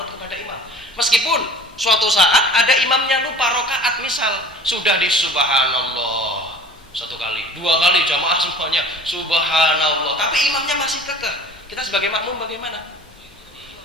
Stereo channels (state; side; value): normal; both; correlation 0.44